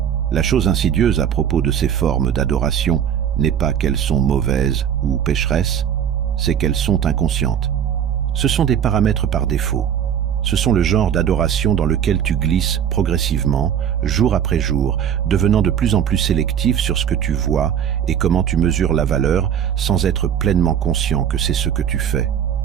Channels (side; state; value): left; quieter; 9.0 dB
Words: La chose insidieuse à propos de ces formes d'adoration n'est pas qu'elles sont mauvaises ou pécheresses, c'est qu'elles sont inconscientes. Ce sont des paramètres par défaut. Ce sont le genre d'adoration dans lequel tu glisses progressivement, jour après jour, devenant de plus en plus sélectif sur ce que tu vois et comment tu mesures la valeur sans être pleinement conscient que c'est ce que tu fais.